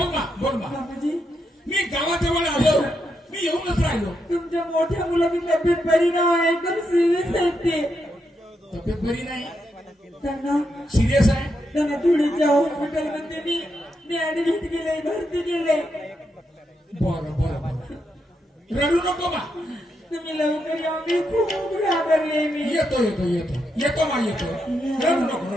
ना बोल ना. मामाजी, मी गावाजवळ आलो. मी येऊनच राहिलो. तुमच्या मोठ्या मुलाची तब्येत बरी नाही, एकदम सिरियस आहे ते. तब्येत बरी नाही त्यांना सिरियस आहे. धुळीच्या हॉस्पिटलमध्ये मी ऍडमिट केले, भरती केले. बरं बरं बरं रडू नको बा. तुम्ही लवकर या, मी खूप घाबरले. मी येतो येतो येतो येतो मा येतो. रडू नको रडू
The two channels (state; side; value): normal; both; correlation 0.82